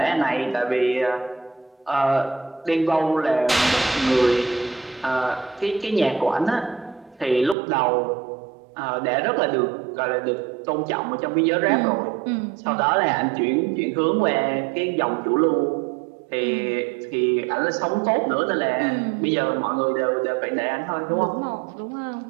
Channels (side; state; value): left; drops out; at 7.6 s